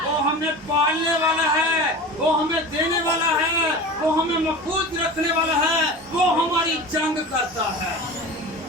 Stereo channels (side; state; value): both; normal; correlation 0.33